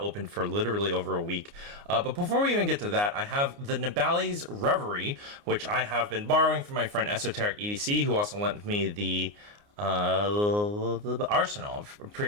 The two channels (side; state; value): left; late; 29 ms